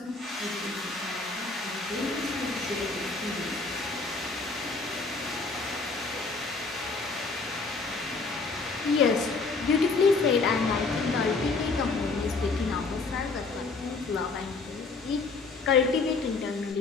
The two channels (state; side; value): quieter; right; 4.1 dB